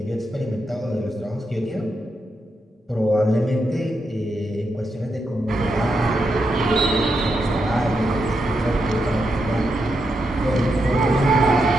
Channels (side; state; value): both; normal; correlation 0.83